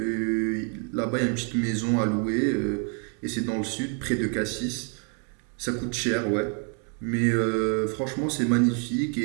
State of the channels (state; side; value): quieter; left; 40.0 dB